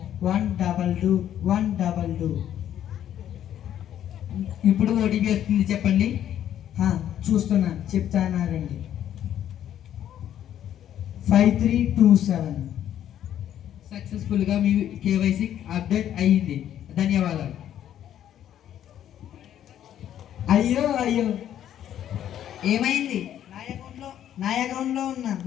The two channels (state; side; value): quieter; right; 10.8 dB